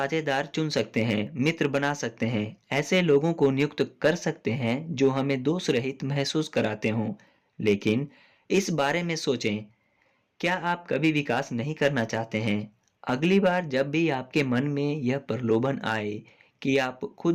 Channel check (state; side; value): identical; both; correlation 1.00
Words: चुन सकते हैं, मित्र बना सकते हैं, ऐसे लोगों को नियुक्त कर सकते हैं जो हमें दोष रहित महसूस कराते हों। लेकिन इस बारे में सोचें, क्या आप कभी विकास नहीं करना चाहते हैं? अगली बार जब भी आपके मन में यह प्रलोभन आए कि आप